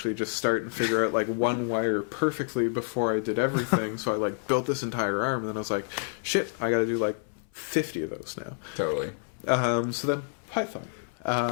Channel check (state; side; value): silent; right; 59 dB below the other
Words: just start and figure out like one wire perfectly before I did everything. So I like built this entire arm and then I was like, shit, I gotta do like 50 of those now. Totally. So then Python.